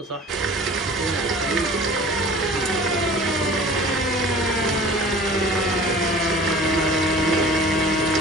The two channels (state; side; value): normal; both; correlation 0.44